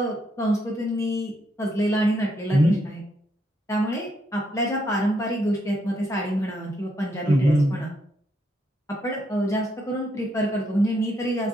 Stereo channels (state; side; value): normal; both; correlation 0.76